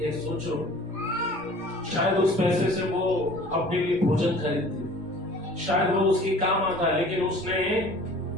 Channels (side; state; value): both; normal; correlation 0.47